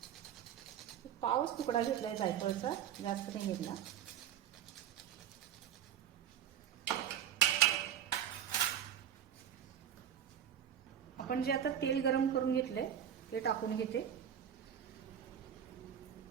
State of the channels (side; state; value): left; quieter; 9.4 dB